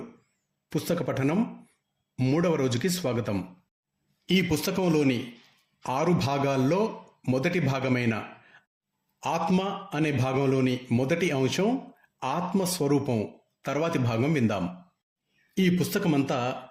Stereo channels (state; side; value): identical; both; correlation 1.00